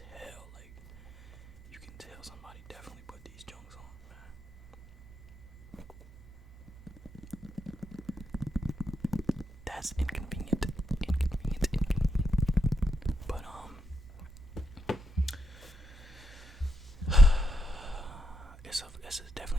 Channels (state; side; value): normal; both; correlation 0.81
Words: like you can tell somebody definitely put these Jones on, man. That's inconvenient. But it's